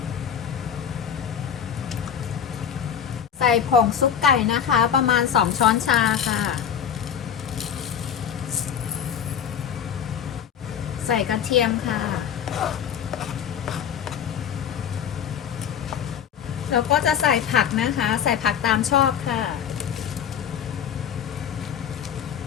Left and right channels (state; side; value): quieter; right; 8.4 dB